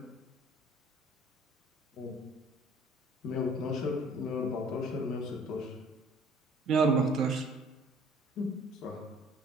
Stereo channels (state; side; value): normal; both; correlation 0.52